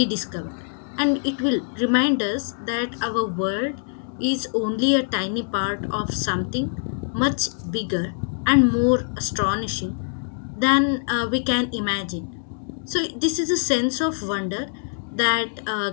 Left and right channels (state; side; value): silent; right; digital silence